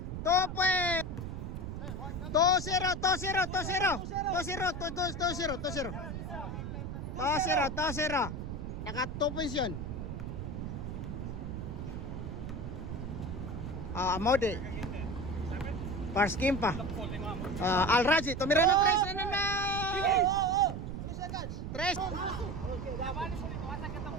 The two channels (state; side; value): noise; right; rumble, 6 dB below the sound